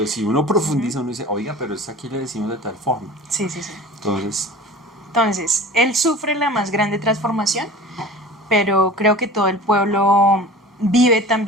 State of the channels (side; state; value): both; normal; correlation 0.39